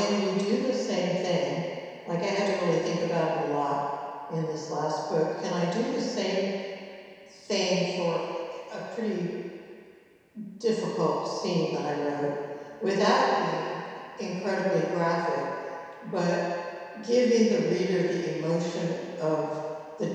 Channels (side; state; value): both; identical; correlation 1.00